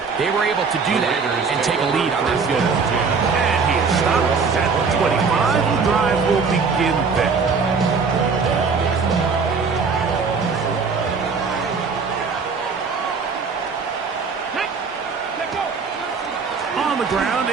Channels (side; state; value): left; quieter; 5.2 dB